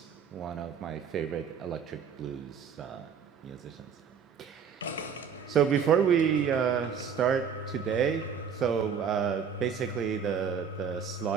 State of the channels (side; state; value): left; quieter; 7.0 dB